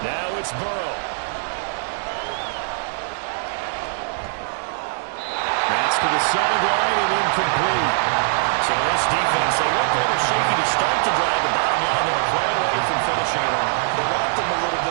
Now it's Burrow. That's to the sideline and incomplete. So this defense, they looked a little shaky to start the drive. The bottom line, they'll play away from finishing it off. They rocked them a little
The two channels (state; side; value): silent; left; digital silence